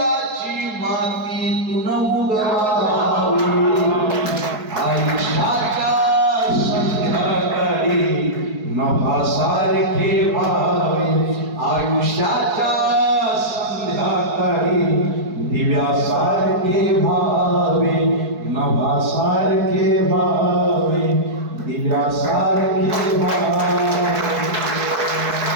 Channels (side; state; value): left; late; 4.7 ms